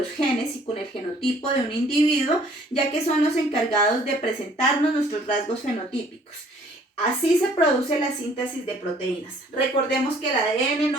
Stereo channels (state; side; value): normal; both; correlation 0.58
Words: genes y con el genotipo de un individuo, ya que son los encargados de presentarnos nuestros rasgos fenotípicos. Así se produce la síntesis de proteínas. Recordemos que el ADN